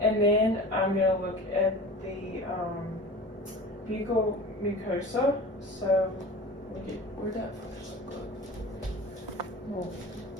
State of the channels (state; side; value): normal; both; correlation 0.36